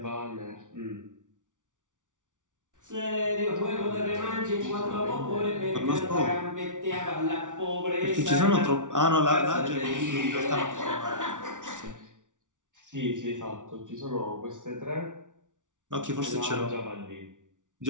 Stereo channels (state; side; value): late; left; 0.87 ms